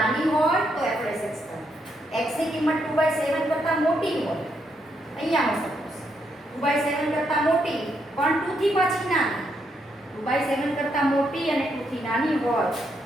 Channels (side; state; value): both; normal; correlation 0.78